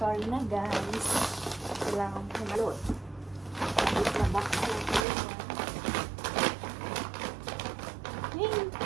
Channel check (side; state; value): left; drops out; at 5.0 s